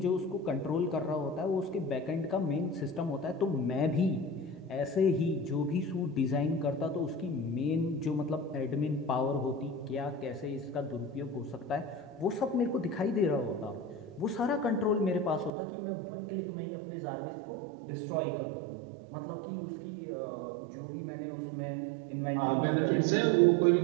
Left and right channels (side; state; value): left; drops out; at 15.5 s